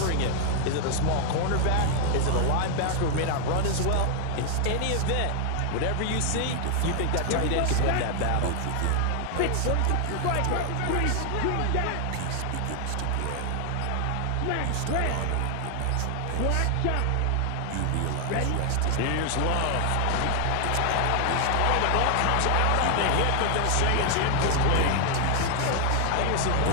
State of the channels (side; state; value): both; different; correlation 0.00